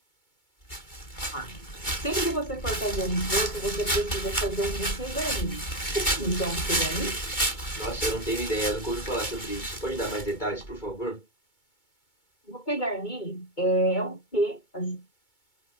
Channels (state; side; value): late; right; 2.2 ms